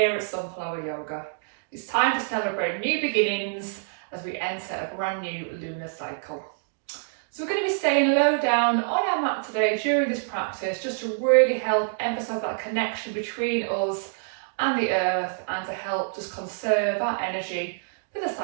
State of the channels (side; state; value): left; silent; digital silence